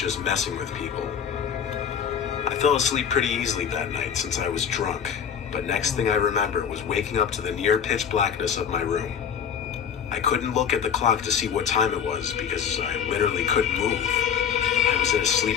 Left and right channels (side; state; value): right; quieter; 7.8 dB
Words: messing with people. I fell asleep pretty easily that night since I was drunk, but next thing I remember was waking up to the near pitch blackness of my room. I couldn't look at the clock to see what time it was because I literally couldn't move. I was in a